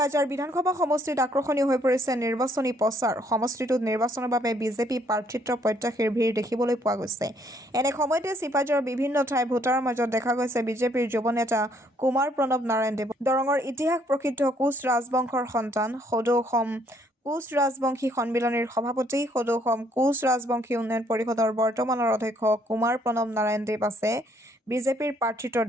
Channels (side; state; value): both; normal; correlation 0.67